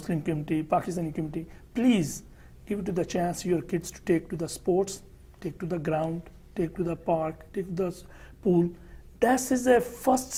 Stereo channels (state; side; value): identical; both; correlation 1.00